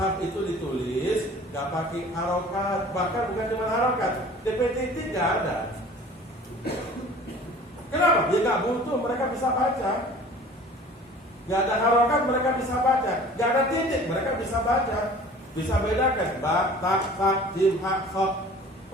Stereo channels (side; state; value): both; normal; correlation 0.46